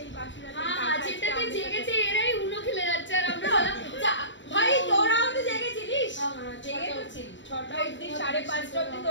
বাসরাতের টাকা হ্যাঁ, যেটাতে জেগেছে এরাই উনো খেলে যাচ্ছে আর আমরা বললাম ভাই তোরাও তো জেগেছিলিস? জেগে তো ছিল 6টা অবধি, 5:30 অবধি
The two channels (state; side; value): late; right; 0.54 ms